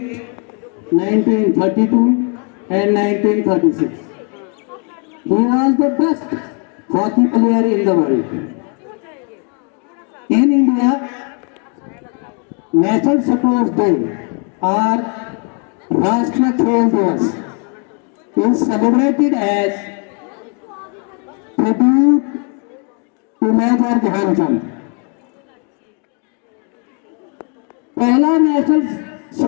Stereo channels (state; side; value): quieter; right; 38.2 dB